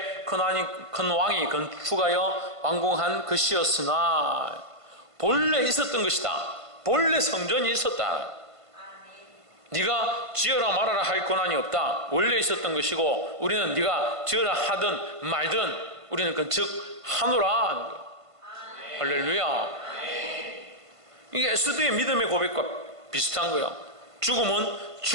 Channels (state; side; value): late; left; 1.5 ms